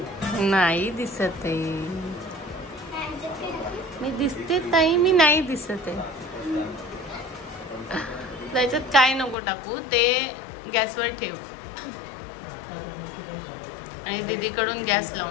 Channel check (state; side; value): drops out; right; at 9.3 s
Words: नाही दिसत आहे मी. दिसते ताई, मी नाही दिसत आहे. त्याच्यात काय नको टाकू, ते गॅसवर ठेव आणि दीदीकडून गॅस